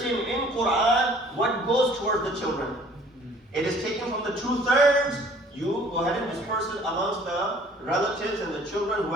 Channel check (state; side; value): normal; both; correlation 0.54